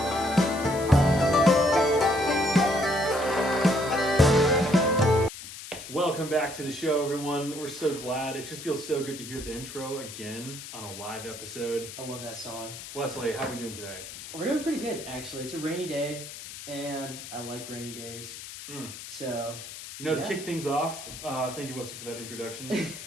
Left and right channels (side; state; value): left; noise; hiss, 12 dB below the sound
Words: Welcome back to the show, everyone. We're so glad. It just feels so good to hear the intro again on a live episode. I love that song. Wesley, how are we doing today? We're doing pretty good, actually. It's a rainy day, and I like rainy days. So, to kick things off, thank you, Wesley, for that introduction.